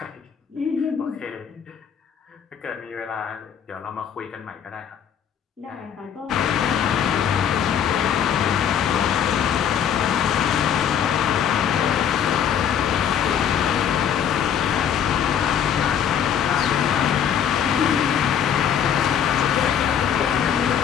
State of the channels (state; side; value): quieter; right; 8.5 dB